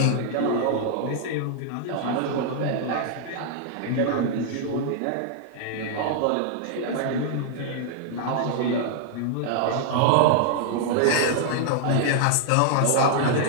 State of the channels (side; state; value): both; different; correlation -0.01